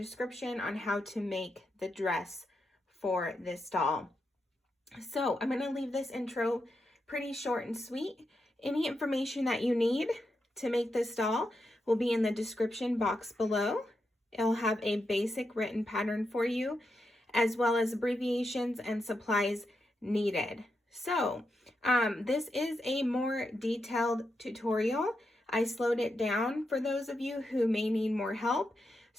on how to make the dress for this doll. So I'm going to leave this intro pretty short and sweet. Any information that you need to make this doll will be in the description box below. It'll have a basic written pattern for you, as well as abbreviations and supplies needed. So this is a more detailed tutorial. I slowed it down for those of you who may need more help.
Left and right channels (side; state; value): both; normal; correlation 0.85